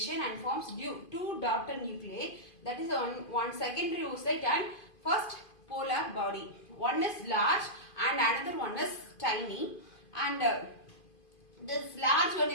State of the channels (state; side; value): late; right; 2.5 ms